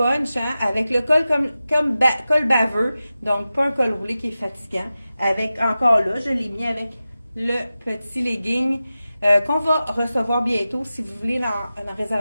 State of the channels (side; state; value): both; inverted; correlation -0.94